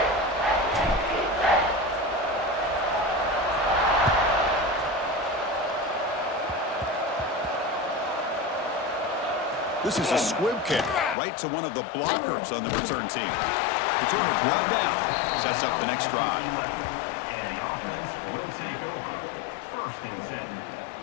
This is a squib kick right to one of the blockers on the return team. Returner brought down, sets up the next drive. And the offense will take over. First and 10.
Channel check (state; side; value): drops out; right; at 11.2 s